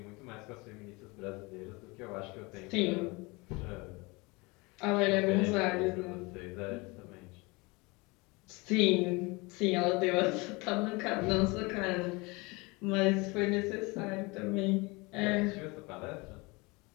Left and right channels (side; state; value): right; quieter; 25.7 dB